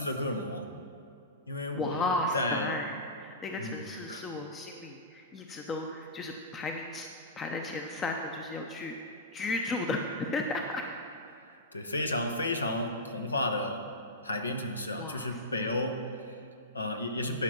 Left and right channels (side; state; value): both; normal; correlation -0.17